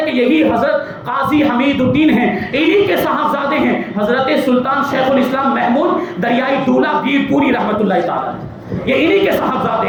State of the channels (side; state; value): both; identical; correlation 1.00